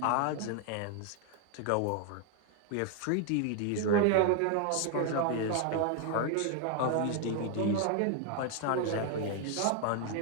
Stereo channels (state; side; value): different; both; correlation 0.01